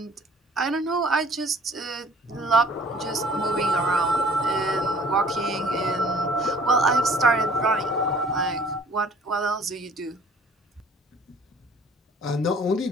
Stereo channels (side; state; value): both; normal; correlation 0.53